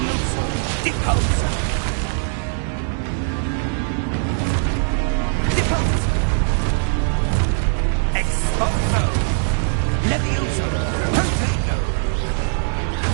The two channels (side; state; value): left; silent; 65 dB below the other